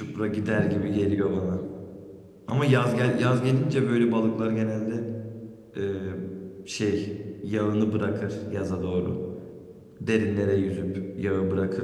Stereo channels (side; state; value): both; identical; correlation 1.00